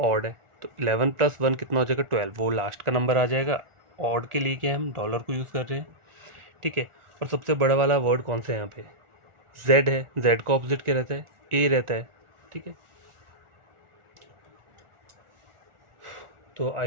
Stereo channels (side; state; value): left; late; 1.4 ms